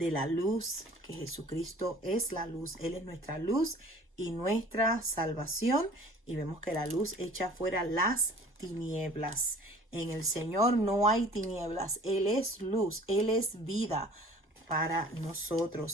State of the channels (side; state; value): both; normal; correlation 0.48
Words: la luz, que Jesucristo es la luz, Él es nuestra luz y nuestra salvación, y vemos que la luz echa fuera las tinieblas. En el Señor no hay tinieblas, Él es luz, Él es vida para